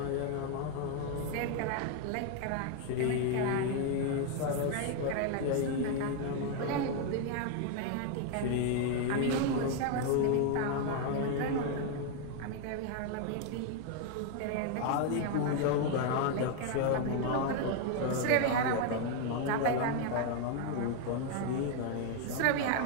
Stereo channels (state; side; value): different; both; correlation 0.01